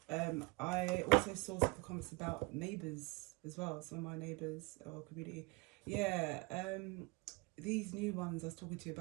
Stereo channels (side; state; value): left; quieter; 27.4 dB